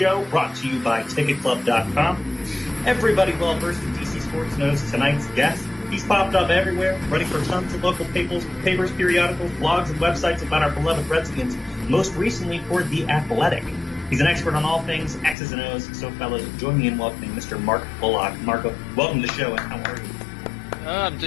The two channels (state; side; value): drops out; right; at 15.4 s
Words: brought to you by TicketClub.com. Everybody well-versed in DC sports knows tonight's guest. He's popped up everywhere, writing for tons of local papers, periodicals, blogs, and websites about our beloved Redskins, most recently for The Athletic. He's an expert on all things X's and O's, so fellas, join me in welcoming Mr. Mark Bullock. Marco, welcome to the show, and how are you? I'm